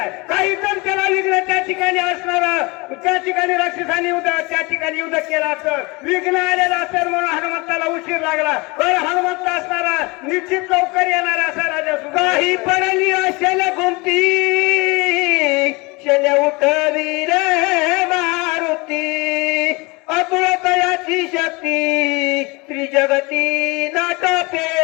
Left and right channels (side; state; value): right; quieter; 25.9 dB